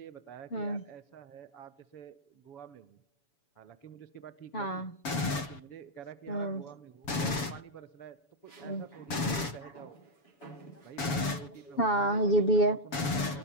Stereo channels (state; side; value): late; right; 7.1 ms